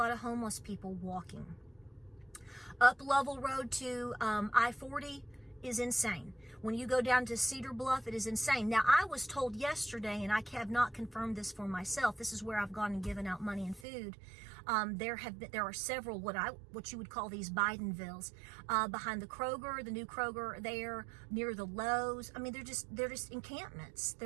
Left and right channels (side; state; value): left; drops out; at 13.9 s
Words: of homeless people walking. Up Level Road to I-40 is insane. When you go down to Cedar Bluff, it is insane. Now, I was told yesterday, and I have not confirmed this for myself, this is where I've gone and given out money and food. There are several what you would call these Bidenvilles behind the Kroger, the new Kroger there, near the Lowe's. I mean, they're just encampments.